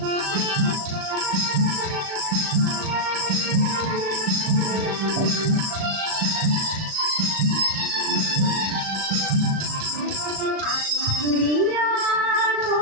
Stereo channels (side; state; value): left; late; 37 ms